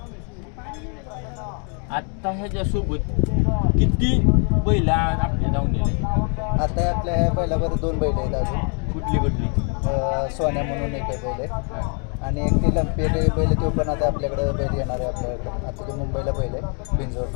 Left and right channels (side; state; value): right; quieter; 39.5 dB